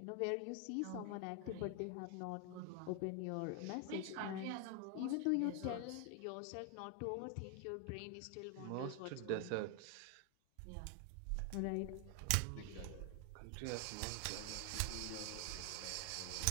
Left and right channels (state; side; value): different; both; correlation 0.00